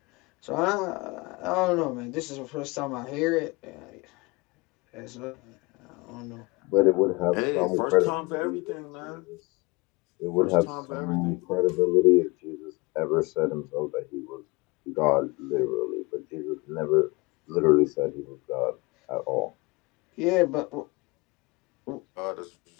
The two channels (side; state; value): right; quieter; 25.4 dB